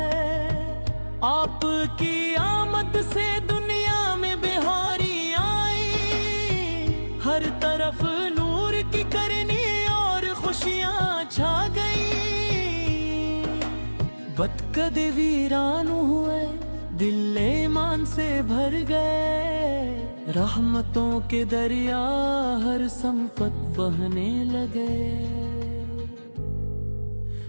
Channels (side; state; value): both; inverted; correlation -1.00